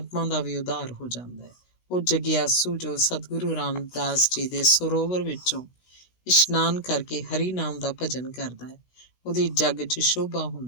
ਦਾ ਵੀ ਉਧਾਰ ਹੋ ਜਾਂਦਾ ਹੈ। ਉਹ ਜਗਿਆਸੂ ਜੋ ਸਤਿਗੁਰੂ ਰਾਮਦਾਸ ਜੀ ਦੇ ਸਰੋਵਰ ਵਿੱਚੋਂ ਇਸ਼ਨਾਨ ਕਰਕੇ ਹਰੀ ਨਾਮ ਦਾ ਭਜਨ ਕਰਦਾ ਹੈ, ਉਹਦੀ ਜੱਗ 'ਚ ਸ਼ੋਭਾ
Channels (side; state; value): right; late; 16 ms